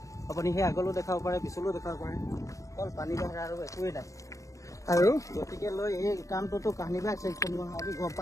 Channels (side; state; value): right; late; 0.16 ms